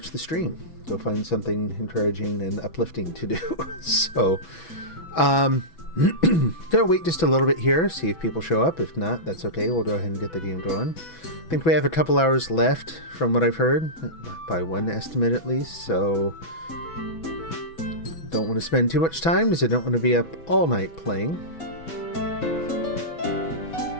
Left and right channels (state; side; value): late; right; 6.1 ms